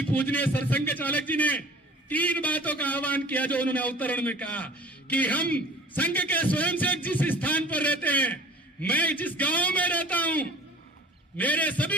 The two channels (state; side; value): normal; both; correlation 0.45